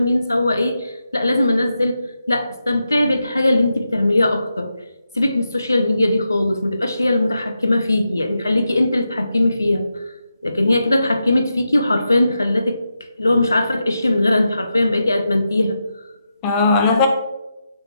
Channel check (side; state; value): both; inverted; correlation -0.87